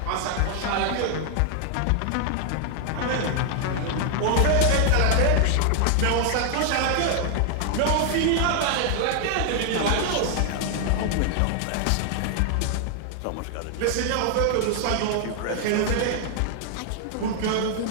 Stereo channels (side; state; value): both; different; correlation 0.00